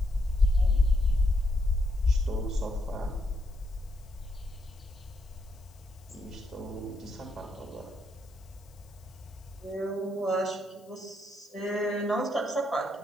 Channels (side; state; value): left; noise; hiss, 29 dB below the sound